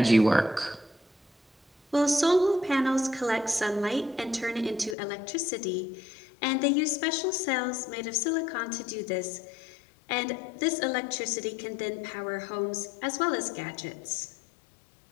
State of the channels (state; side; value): drops out; right; at 5.0 s